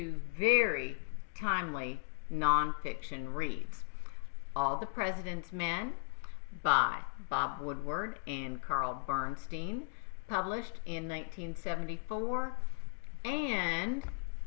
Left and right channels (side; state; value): right; silent; 53 dB below the other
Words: very timely nonfiction reads. All the President's Men by Bob Woodward and Bernstein, published in 1974, and